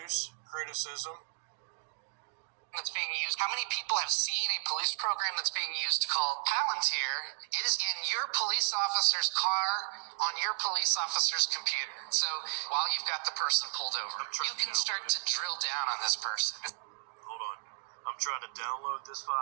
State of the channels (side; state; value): left; silent; digital silence